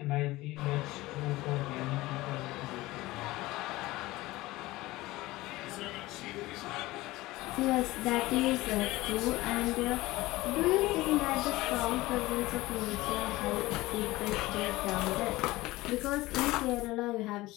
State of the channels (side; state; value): right; quieter; 19.0 dB